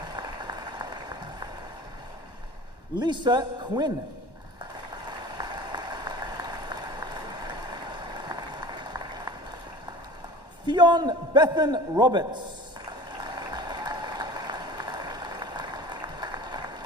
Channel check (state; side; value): late; right; 1.1 ms